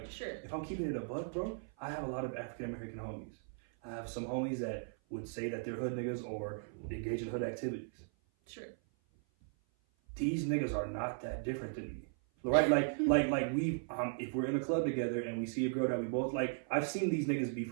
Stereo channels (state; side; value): silent; left; 53 dB below the other